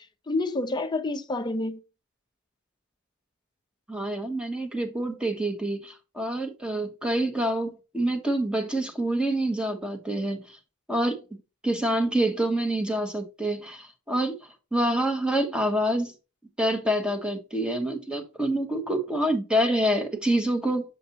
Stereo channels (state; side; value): normal; both; correlation 0.76